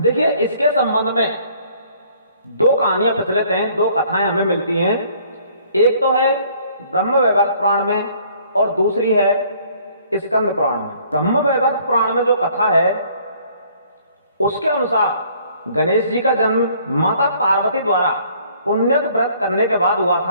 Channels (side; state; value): both; inverted; correlation -0.59